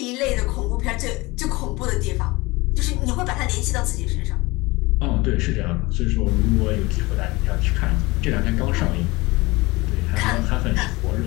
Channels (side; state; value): right; quieter; 22.4 dB